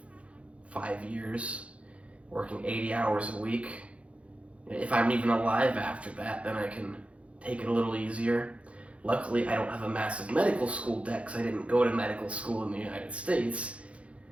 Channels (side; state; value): left; late; 0.062 ms